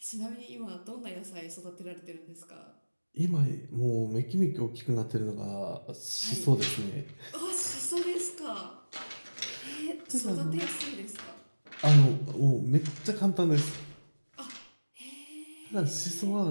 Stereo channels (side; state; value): both; inverted; correlation -1.00